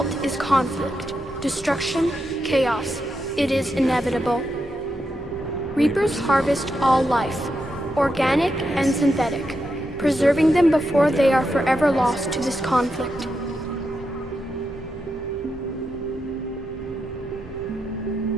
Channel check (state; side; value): normal; both; correlation 0.85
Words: is conflict, destruction, chaos. It is inevitable. Reapers harvest all life, organic and synthetic, preserving them before they are forever lost to this conflict.